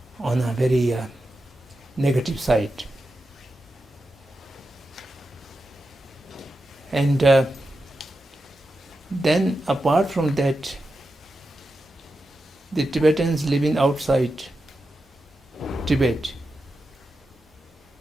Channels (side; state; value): both; normal; correlation 0.90